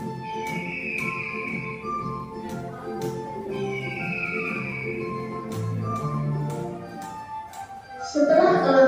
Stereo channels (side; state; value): both; identical; correlation 1.00